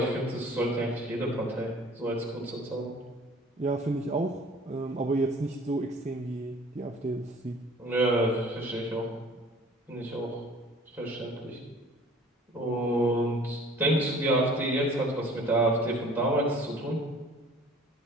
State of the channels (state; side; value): normal; both; correlation 0.50